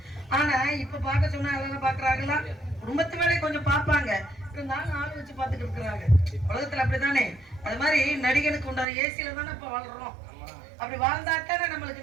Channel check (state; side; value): drops out; left; at 8.8 s